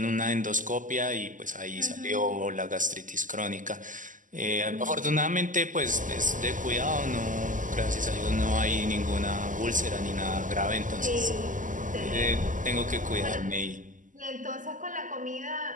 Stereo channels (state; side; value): late; left; 0.38 ms